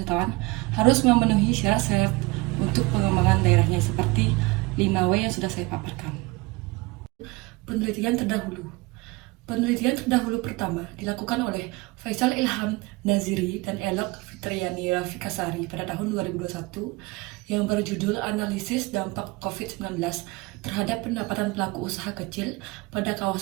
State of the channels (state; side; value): quieter; left; 23.9 dB